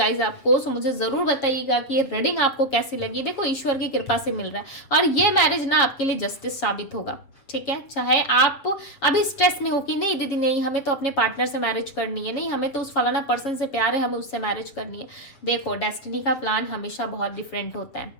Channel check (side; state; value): right; late; 7.3 ms